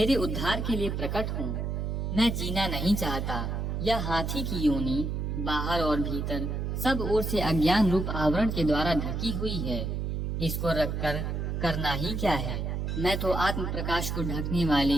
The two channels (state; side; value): noise; right; hum, 2 dB below the sound